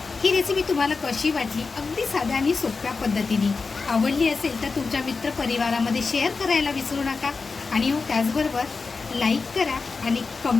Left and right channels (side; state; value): right; quieter; 4.4 dB